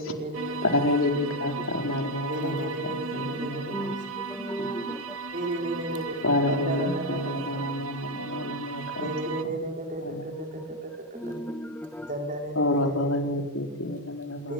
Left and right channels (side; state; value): both; normal; correlation 0.06